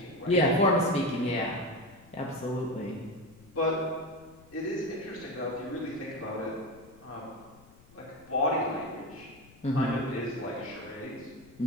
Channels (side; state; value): left; noise; rumble, 24 dB below the sound